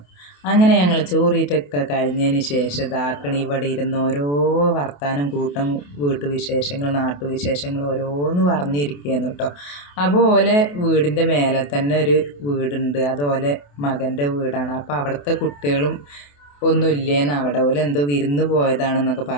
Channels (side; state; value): right; late; 28 ms